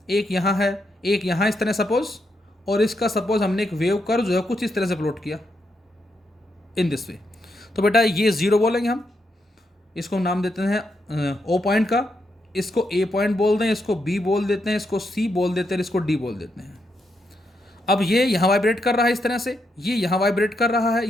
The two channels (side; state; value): both; normal; correlation 0.81